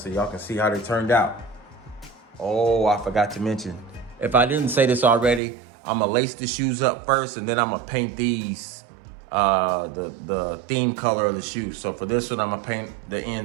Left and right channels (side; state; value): left; drops out; at 5.4 s